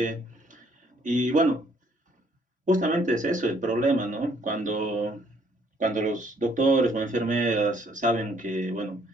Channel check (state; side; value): normal; both; correlation 0.65